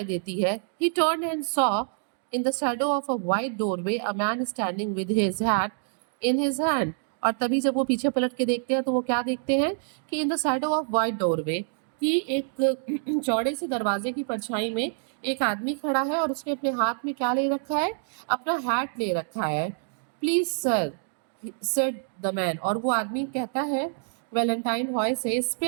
देती है। ही turn and saw in the shadow of a white doorway a man standing with his hat in his hand. और तभी जब वो पीछे पलट के देखते हैं तो वो क्या देखते हैं कि in the shadow of white doorway, कि एक चौड़े से दरवाजे की परछाई में एक आदमी खड़ा है और उसने अपने हाथ में क्या ले रखा है, अपना हैट ले रखा है। Please sir, said the man, और वो आदमी कहता है वैलेंटाइन हॉय से,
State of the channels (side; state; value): left; silent; digital silence